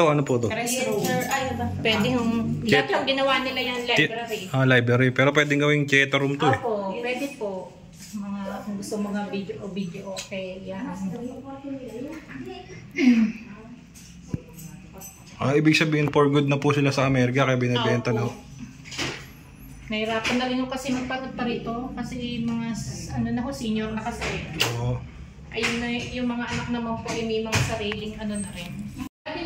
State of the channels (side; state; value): both; identical; correlation 1.00